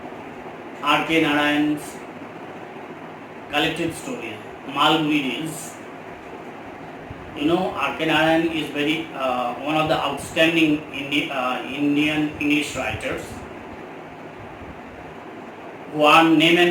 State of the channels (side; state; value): both; identical; correlation 1.00